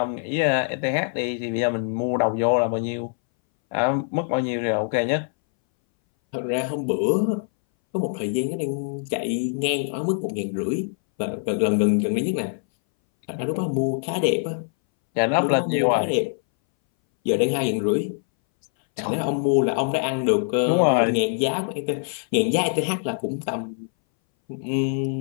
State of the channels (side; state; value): right; silent; 61 dB below the other